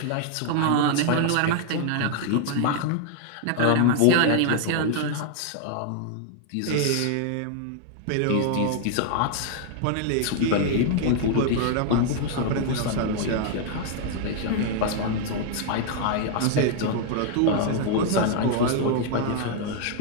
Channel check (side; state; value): both; different; correlation 0.00